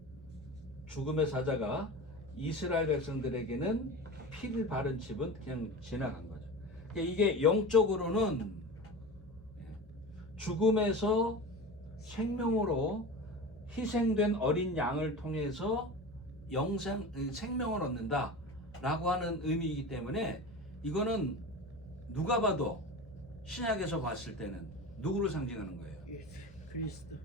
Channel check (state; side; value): normal; both; correlation 0.30